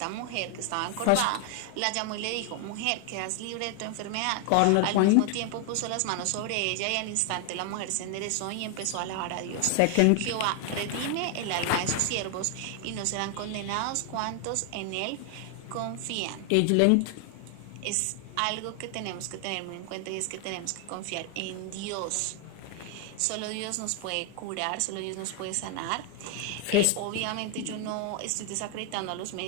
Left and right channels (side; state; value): both; different; correlation 0.00